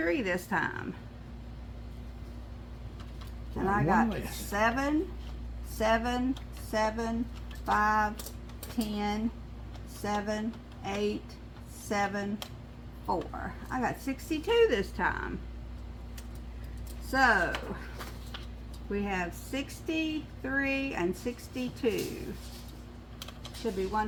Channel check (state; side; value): identical; both; correlation 1.00